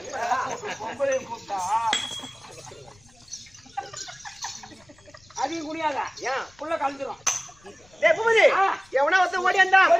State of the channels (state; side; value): noise; left; rumble, 29 dB below the sound